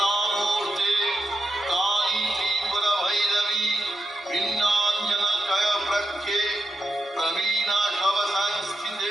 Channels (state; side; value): normal; both; correlation 0.86